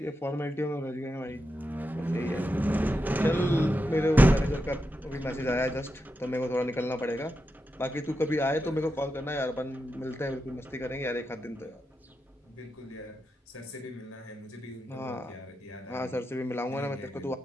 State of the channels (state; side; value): normal; both; correlation 0.87